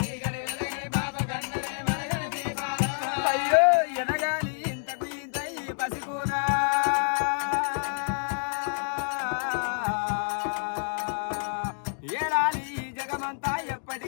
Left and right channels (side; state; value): right; silent; digital silence